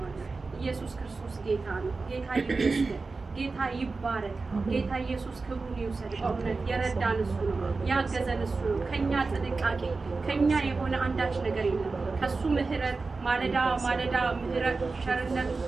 ኢየሱስ ክርስቶስ ጌታ ነው። ጌታ ይመስገን። ጌታ ይባረክ። ጌታ ኢየሱስ ክብሩን ይውሰድ። በእውነት የረዳን እሱ ነው፣ ያገዘን እሱ ነው። ከኛ ጥንቃቄ ከኛ የሆነ አንዳች ነገር የለም። ከሱ ምህረት ማለዳ ማለዳ ምህረት ቸርነት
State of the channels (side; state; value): left; quieter; 4.0 dB